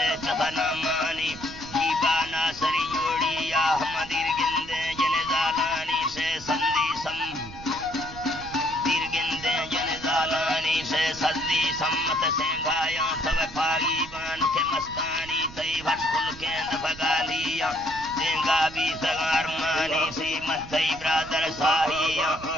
چفنامانی جیبانا سری جوڑی یا احمدیر گندے جن زالانی سے سندی سم دیر گندے جن زالانی سے سندی سمت سینگایا تب پاگی بان کے مستانی تی بھشکل کیند بگالیا دینگا بھی سگار مانی سی متی برادر ساہیا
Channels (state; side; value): noise; right; rumble, 16 dB below the sound